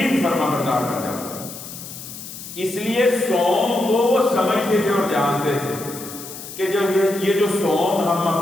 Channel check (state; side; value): noise; left; hiss, 12 dB below the sound